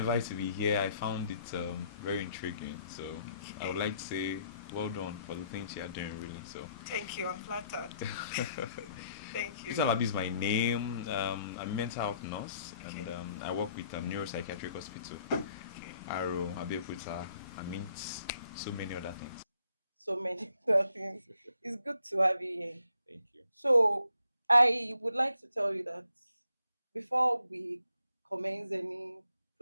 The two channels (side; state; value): both; inverted; correlation -0.70